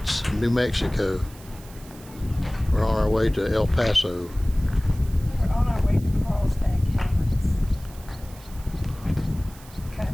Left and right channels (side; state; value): right; noise; hiss, 21 dB below the sound